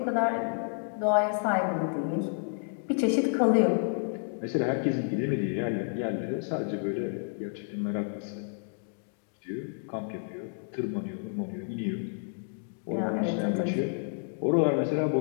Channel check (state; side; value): silent; right; digital silence